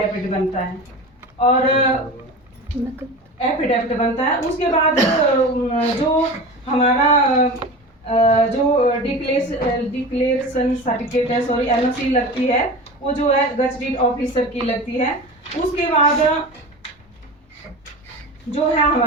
बनता है, और एफिडेविट बनता है। उसके बाद जो हमारा जो डिक्लेरेशन सर्टिफिकेट है, सॉरी एनओसी लगती है, वो जो है गजटेड ऑफिसर की लगती है। उसके बाद जो है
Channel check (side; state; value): both; normal; correlation 0.31